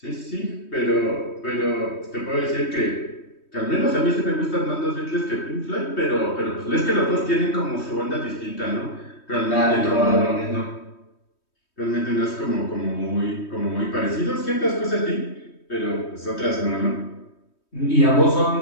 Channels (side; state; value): right; late; 3.2 ms